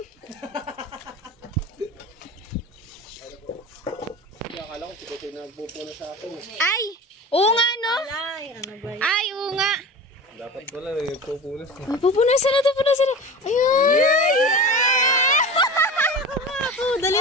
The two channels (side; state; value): both; normal; correlation 0.32